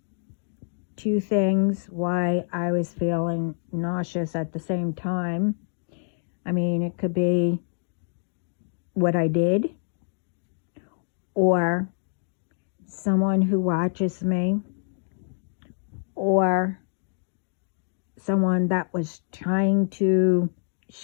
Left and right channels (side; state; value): right; silent; digital silence